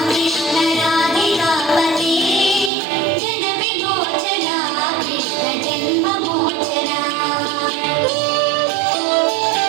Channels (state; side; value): drops out; left; at 2.7 s